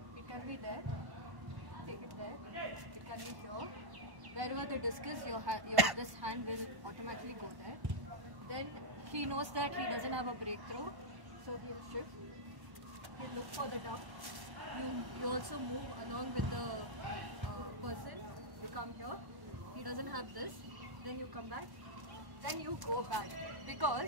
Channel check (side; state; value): left; late; 1.1 ms